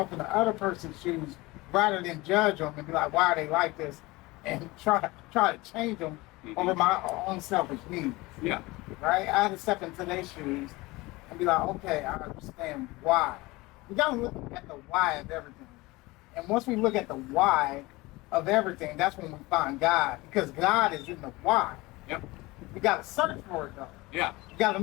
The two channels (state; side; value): quieter; right; 21.7 dB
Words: in the other person's shoes rather than judge them and be like, why are they like this? And try to change them over my own selfish needs. Yeah. Right? I had to step into their shoes and be like, okay, I understand why. We got to look at the why of everything. And once we look at the why of everything, that's when we find God. Because God is in the why. Yep. We got to search for it, though. Yeah. You got to